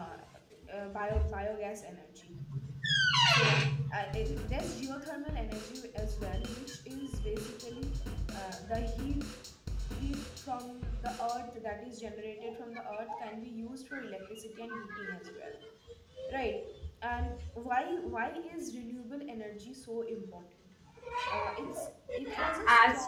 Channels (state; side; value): identical; both; correlation 1.00